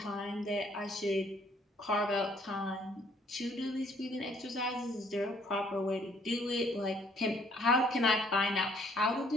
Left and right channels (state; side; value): normal; both; correlation 0.63